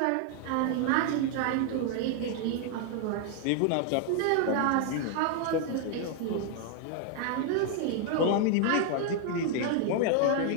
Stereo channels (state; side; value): different; both; correlation 0.00